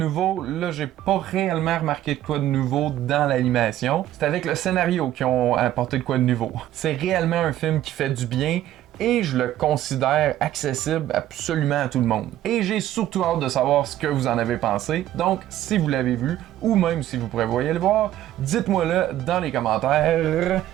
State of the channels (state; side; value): quieter; left; 13.1 dB